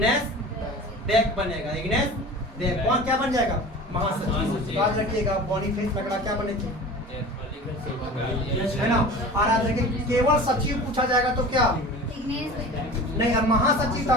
बैग बनेगा। इग्नेस बैग कौन क्या बन जाएगा? महासचिव। याद रखिएगा बोनीफेस लकड़ा क्या बने थे, है ना। और याद रखिए केवल सचिव पूछा जाएगा तो क्या नहीं। और महासचिव था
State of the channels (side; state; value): both; normal; correlation 0.37